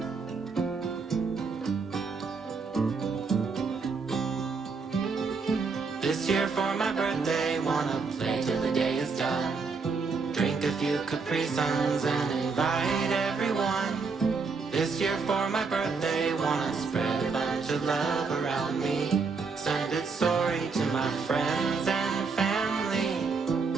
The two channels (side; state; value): left; quieter; 4.8 dB